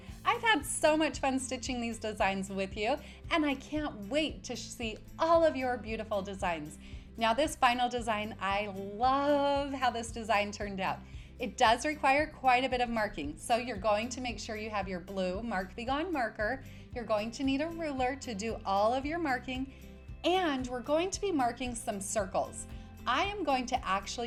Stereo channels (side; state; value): both; identical; correlation 1.00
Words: I've had so much fun stitching these designs with you, and I can't wait to see all of your beautiful designs. Now this final design, I love how this design turned out. It does require quite a bit of marking, so you're going to make sure you have your blue Mark Be Gone marker. You're going to need a ruler to do all of your marking, and we're going to be marking some circles. I am going to